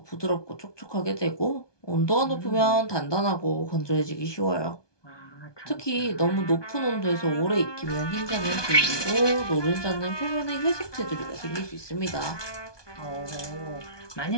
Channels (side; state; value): right; late; 1.2 ms